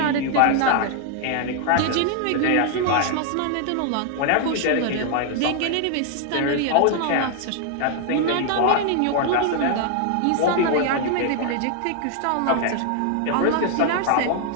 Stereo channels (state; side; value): different; both; correlation 0.00